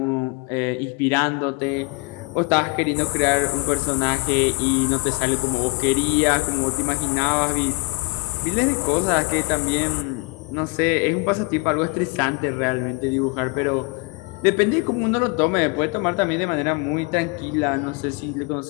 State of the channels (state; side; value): quieter; right; 29.5 dB